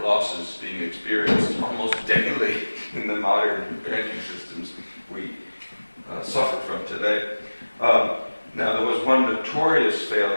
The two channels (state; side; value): inverted; both; correlation -1.00